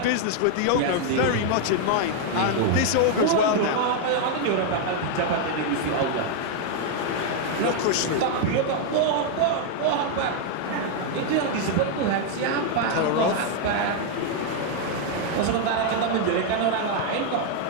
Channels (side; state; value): both; different; correlation 0.00